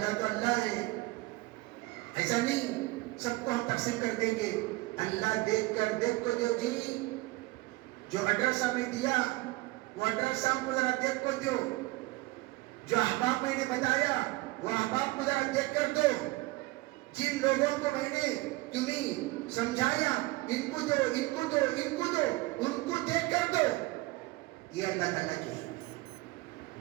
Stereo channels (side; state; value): left; quieter; 21.3 dB